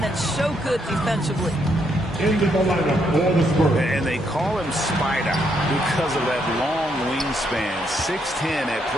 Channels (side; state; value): both; normal; correlation 0.75